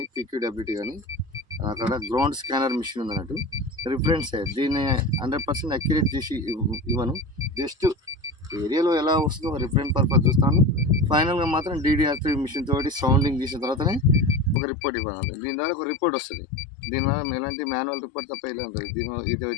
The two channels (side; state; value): right; drops out; at 14.6 s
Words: PQWT కానీ అక్కడ గ్రౌండ్ స్కానర్ మిషన్ ఉంది అన్నట్టు. రిఫరెన్సే దీన్ని 100% అక్యురేట్ చేసి ఇవ్వను. జస్ట్ ఏరియాలో ఎలా వస్తుందో రిఫరెన్స్ పర్పస్ చూస్తాను. ఫైనల్గా మాత్రం DDR3 మిషన్ తోటి సౌండింగ్ చేసిన తర్వాతనే ఒక రిపోర్ట్ ఇవ్వాలి. దీని ద్వారా ఒక రిపోర్ట్ వస్తుంది. దీనివల్ల ఎలాంటి మాన్యువల్ రిపోర్ట్ తప్ప ఇలా ఉంటుంది. ఇది